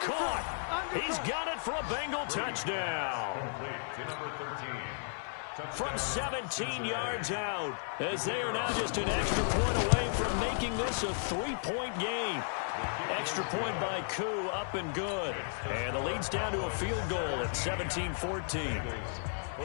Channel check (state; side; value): silent; right; 55 dB below the other